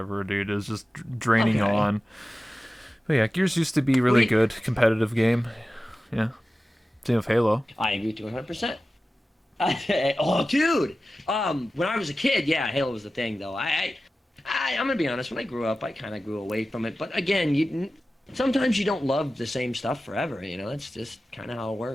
dude. It was just draining Okay. on. But yeah, Gears used to be really We. good, competitive game. Yeah, same with Halo. I agree to 100%. Oh, dude. When I was a kid, yeah, Halo was the thing, though. I'm gonna be honest. When I grew up, I kind of grew away from it. But again, sometimes you don't love the same stuff forever. You know, that's just kind of how it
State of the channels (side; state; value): both; normal; correlation 0.95